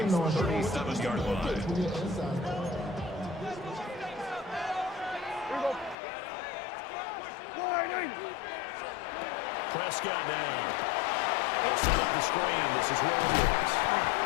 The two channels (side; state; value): right; drops out; at 6.0 s